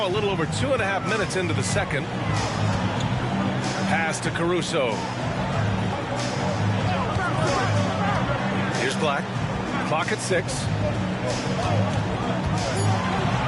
a little over 2.5 minutes into the second. Pass to Caruso. Here's Black. Clock at 6.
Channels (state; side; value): identical; both; correlation 1.00